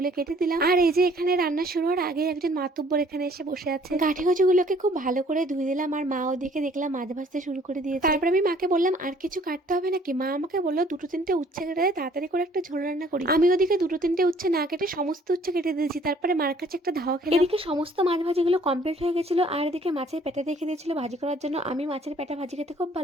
কেটে দিলাম। আর এই যে এখানে রান্না শুরু হওয়ার আগে একজন মাতুব্বর এখানে এসে বসে আছে। গাঁঠি কচুগুলোকে খুব ভালো করে ধুয়ে দিলাম আর মা ওদিকে দেখলাম মাছ ভাজতে শুরু করে দিয়েছে। তারপরে আমি মাকে বললাম আর কিছু কাটতে হবে নাকি। মা আমাকে বললো দুটো তিনটে উচ্ছে কেটে দেয়, তাড়াতাড়ি করে একটা ঝোল রান্না করি। আমি ওদিকে দুটো তিনটে উচ্ছে না কেটে সমস্ত উচ্ছে কেটে দিয়েছি। তারপরে মার কাছে একটা ধাওয়া খেলাম। এদিকে সমস্ত মাছ ভাজিগুলো কমপ্লিট হয়ে গেছিল আর এদিকে মাছের পেটা রেখে দিয়েছিল ভাজি করার জন্য। আমি মাছের পেটা ভাজি খেতে খুব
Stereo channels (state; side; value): normal; both; correlation 0.58